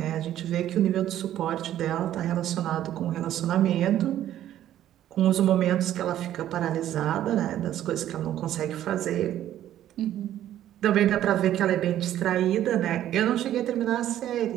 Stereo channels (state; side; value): quieter; left; 12.1 dB